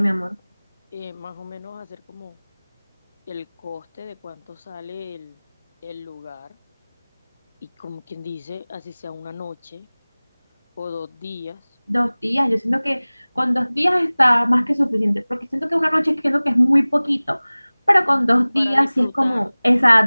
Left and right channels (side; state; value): both; inverted; correlation -1.00